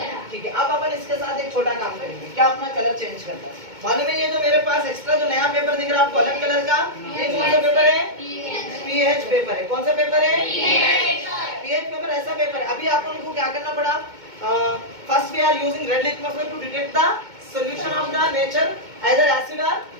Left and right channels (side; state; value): left; late; 2.2 ms